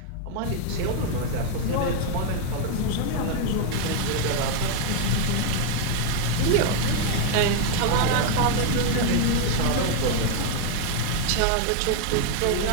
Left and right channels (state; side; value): different; both; correlation 0.01